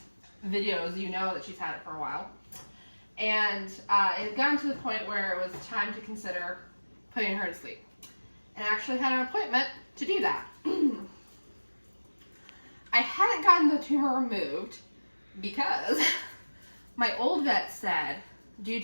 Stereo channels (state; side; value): inverted; both; correlation -1.00